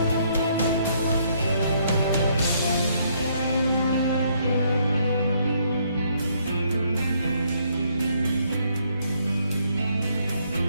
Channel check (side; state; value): both; inverted; correlation -0.69